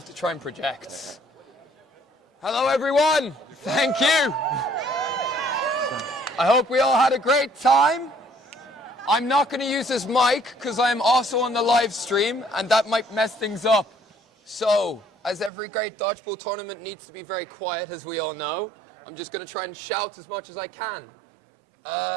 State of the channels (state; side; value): drops out; left; at 15.5 s